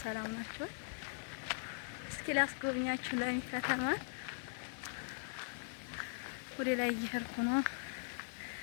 ሰላም ናችሁ? እስኪ ላስጎብኛችሁ ለሚ ከተማ ወደ ላይ እየሄድኩ ነው፣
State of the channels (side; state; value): right; silent; 51 dB below the other